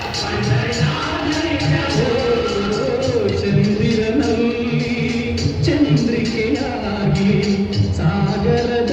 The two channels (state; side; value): identical; both; correlation 1.00